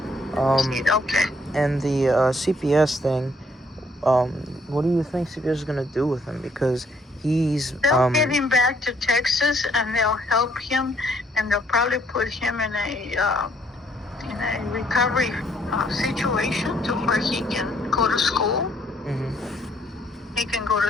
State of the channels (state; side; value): normal; both; correlation 0.67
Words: Okay. And the CPS thing, what do you think CPS is gonna do with him? Because he's they'll get him back to Texas, and they'll help him, and they'll probably put him in a recovery situation to where he can go to school. He can go